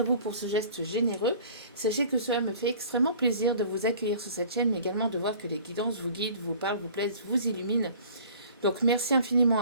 vous pour ce geste généreux. Sachez que cela me fait extrêmement plaisir de vous accueillir sur cette chaîne, mais également de voir que les guidances vous guident, vous parlent, vous plaisent, vous illuminent. Donc merci infiniment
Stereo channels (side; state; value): both; inverted; correlation -0.48